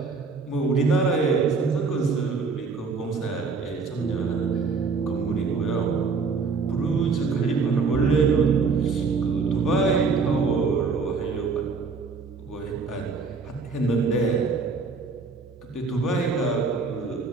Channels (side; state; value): left; quieter; 4.7 dB